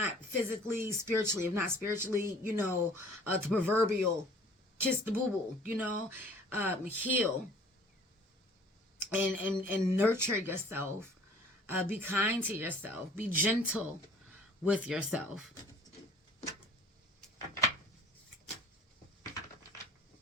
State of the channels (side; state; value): both; normal; correlation 0.51